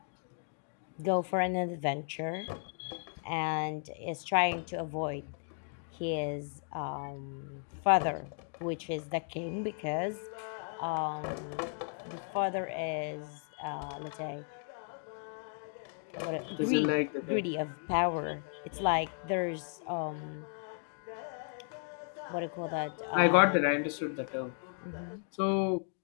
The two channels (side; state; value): right; silent; 55 dB below the other